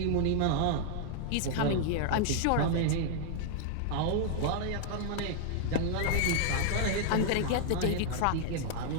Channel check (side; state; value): both; different; correlation 0.00